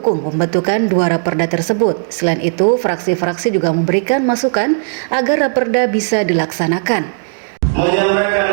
pembentukan 2 raperda tersebut. Selain itu, fraksi-fraksi juga memberikan masukan agar raperda bisa dilaksanakan.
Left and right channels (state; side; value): silent; left; digital silence